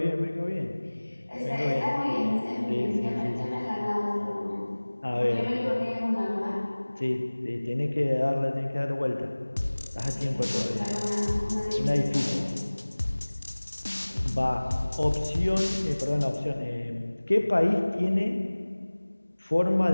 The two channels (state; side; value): inverted; both; correlation -1.00